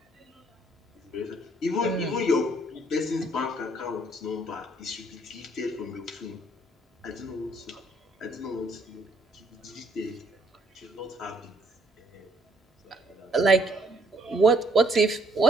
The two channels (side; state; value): both; normal; correlation 0.68